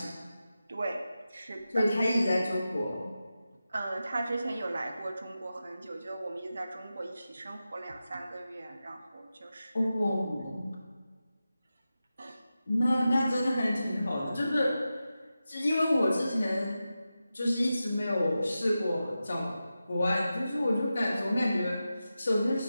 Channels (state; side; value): inverted; both; correlation -0.92